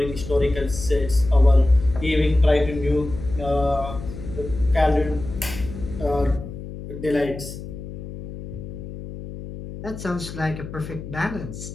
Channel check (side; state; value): left; noise; hum, 11 dB below the sound